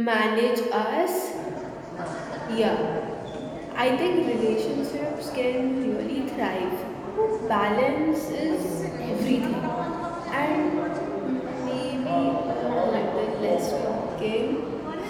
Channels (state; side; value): identical; both; correlation 1.00